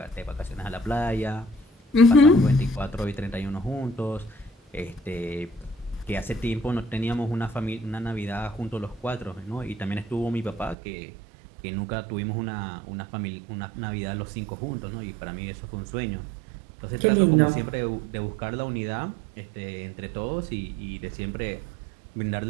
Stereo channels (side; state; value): left; drops out; at 10.8 s